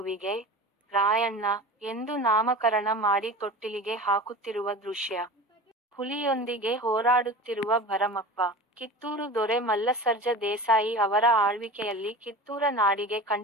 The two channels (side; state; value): both; normal; correlation 0.34